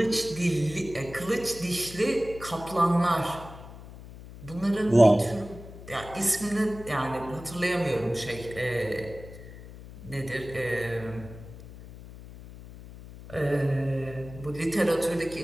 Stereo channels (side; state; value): left; noise; hum, 15 dB below the sound